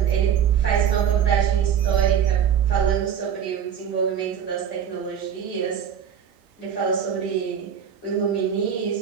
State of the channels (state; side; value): quieter; left; 8.4 dB